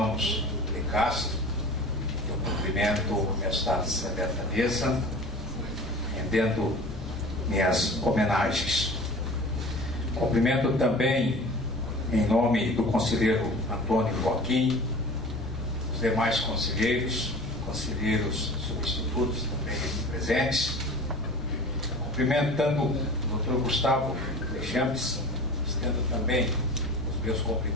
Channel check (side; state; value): both; normal; correlation 0.39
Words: de Castro, eu cumprimento esta seleta mesa, rendendo minhas homenagens. Cumprimento também, em nome do conselheiro Antônio Joaquim, os demais conselheiros substitutos também aqui presentes, cumprimentando o Dr. Gustavo Deschamps, estendo também os meus